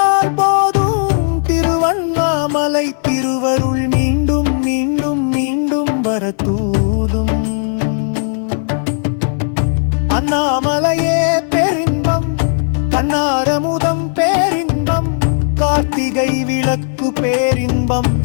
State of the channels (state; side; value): silent; right; digital silence